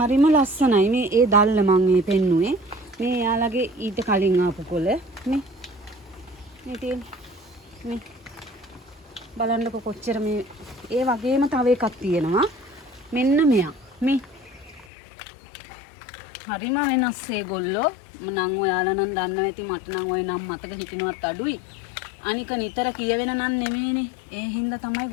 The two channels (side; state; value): right; drops out; at 14.9 s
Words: ලස්සනයි. මේ ඒ දැල්ල මම මේ පෙන්නුවේ. මේ එයාලගේ ඊට කලින් ආපු කොළ මේ තියෙන මේ බලන්නකො කොච්චර මේ ඒ වගේම තව එකක් තියෙනවා. මෙන්න මෙයා. මේ හරිම වෙනස් ඒගොල්ලෝ. මනම් ඔයාලා නම් දන්නවා ඇති. මට නම් ওই නම් මතක හිටිනවත් අඩුයි. අනික නිතර කියවෙන නම් නෙමෙයිනේ. ඒ හින්දා තමයි